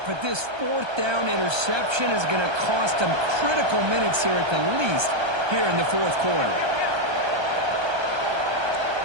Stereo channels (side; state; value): left; late; 1.3 ms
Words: but this fourth down interception is going to cost them critical minutes here at the least here in the fourth quarter.